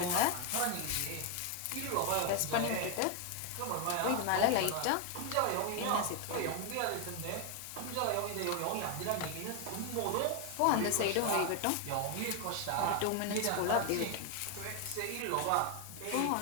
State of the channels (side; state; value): both; different; correlation 0.00